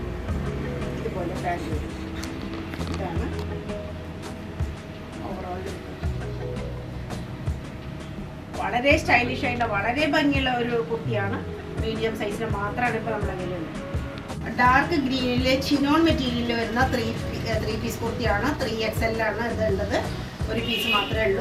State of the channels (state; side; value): identical; both; correlation 1.00